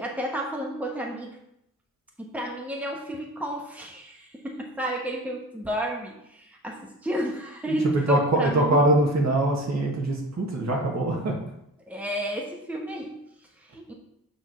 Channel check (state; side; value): normal; both; correlation 0.36